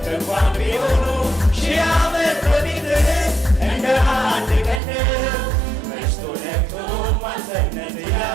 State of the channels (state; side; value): drops out; left; at 4.8 s